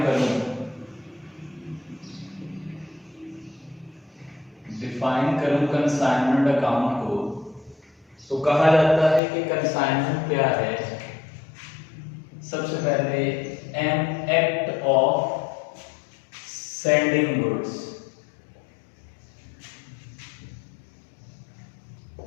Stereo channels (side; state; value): right; drops out; at 9.2 s